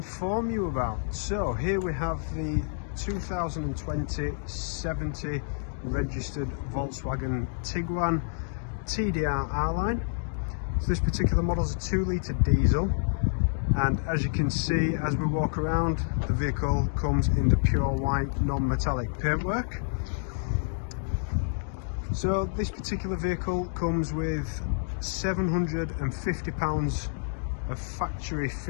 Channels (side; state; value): right; silent; digital silence